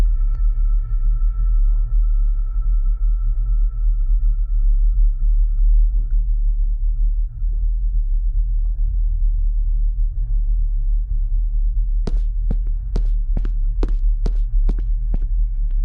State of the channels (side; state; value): both; identical; correlation 1.00